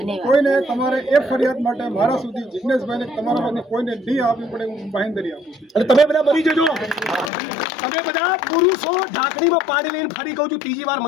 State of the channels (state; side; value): drops out; right; at 7.3 s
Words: કોઈને તમારે એ ફરિયાદ માટે મારા સુધી જિગ્નેશભાઈને તમારામાંથી કોઈને નહીં આપવી પડે હું બાંહેધરી આપું છું। અને તમે બધા મરી જજો, તમે બધા પુરુષો ઢાંકણીમાં પાણી લઈને ફરી કહું છું ત્રીજી વાર